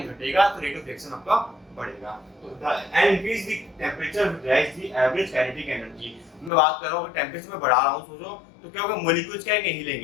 घटेगा तो रेट ऑफ रिएक्शन आपका बढ़ेगा। तो and increase the temperature rise the average kinetic energy. मैं बात कर रहा हूं टेंपरेचर में बढ़ा रहा हूं, सोचो तो क्या होगा, मॉलिक्यूल्स क्या है,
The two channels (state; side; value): drops out; right; at 6.5 s